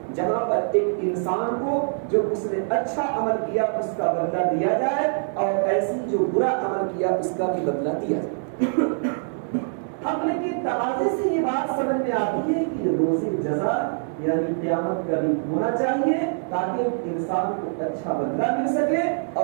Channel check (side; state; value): left; silent; digital silence